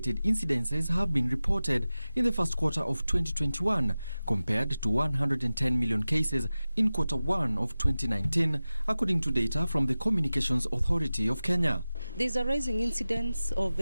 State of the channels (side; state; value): both; inverted; correlation -0.96